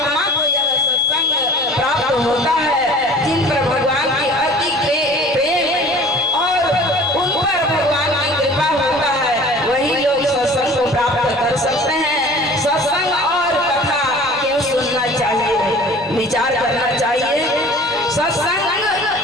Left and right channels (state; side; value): noise; right; hum, 27 dB below the sound